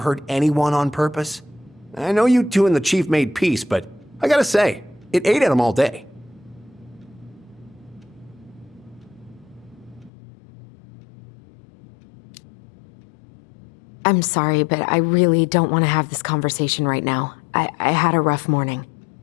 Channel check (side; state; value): right; drops out; at 10.1 s